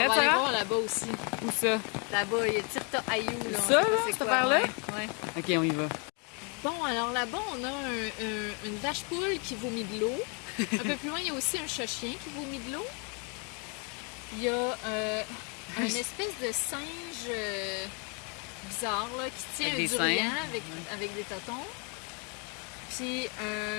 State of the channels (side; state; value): right; quieter; 35.3 dB